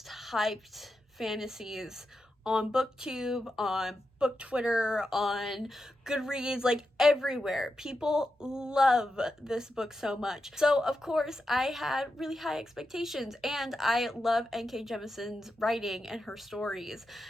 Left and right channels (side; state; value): both; normal; correlation 0.88